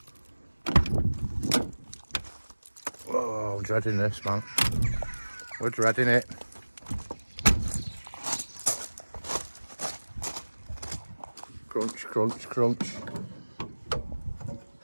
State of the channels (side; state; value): both; inverted; correlation -1.00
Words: Oh, I'm dreading this, man. We're dreading it. Crunch, crunch, crunch.